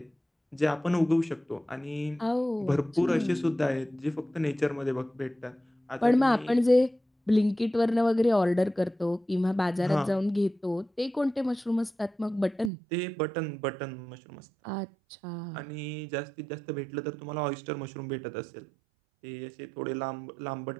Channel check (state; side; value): drops out; left; at 12.7 s